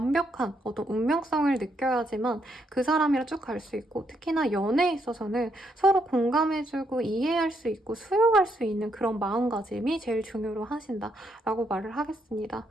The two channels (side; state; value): both; normal; correlation 0.76